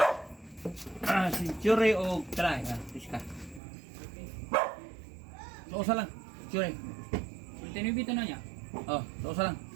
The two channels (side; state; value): left; drops out; at 3.6 s